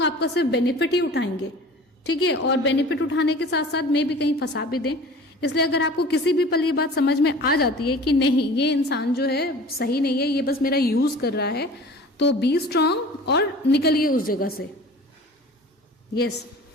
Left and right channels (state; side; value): normal; both; correlation 0.42